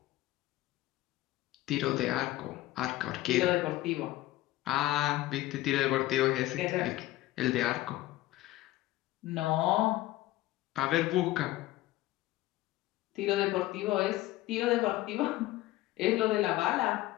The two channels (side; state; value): right; quieter; 16.5 dB